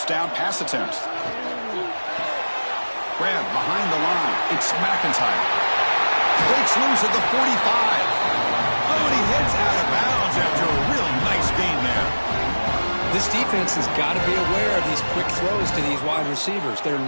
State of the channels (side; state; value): both; inverted; correlation -1.00